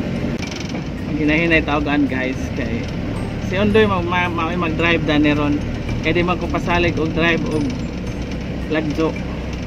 ginahinay taogan guys kay si Ondoy mag-drive da neron kaya di magkupasalig og drive og lagjo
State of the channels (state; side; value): identical; both; correlation 1.00